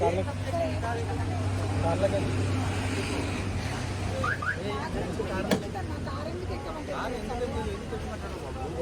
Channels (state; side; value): identical; both; correlation 1.00